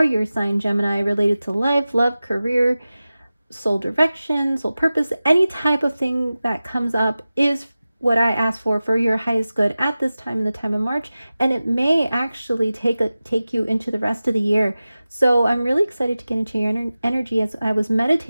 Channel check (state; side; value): inverted; both; correlation -0.96